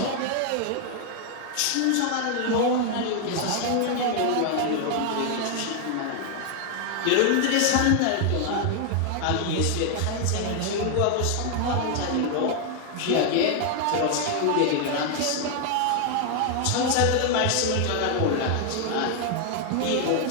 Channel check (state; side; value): different; both; correlation 0.00